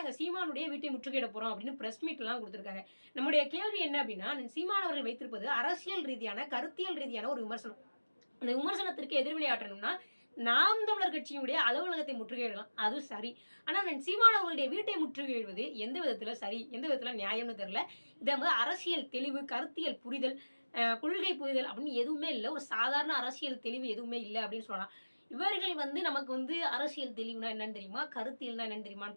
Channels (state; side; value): inverted; both; correlation -1.00